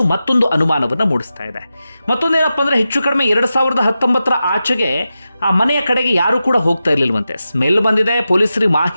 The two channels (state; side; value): inverted; both; correlation -0.92